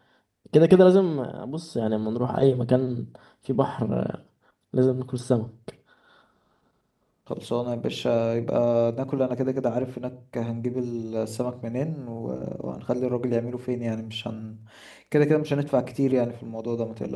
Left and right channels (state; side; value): identical; both; correlation 1.00